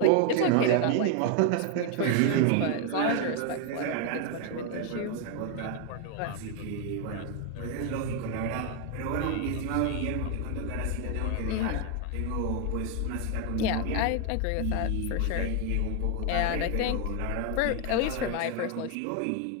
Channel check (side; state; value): both; different; correlation 0.01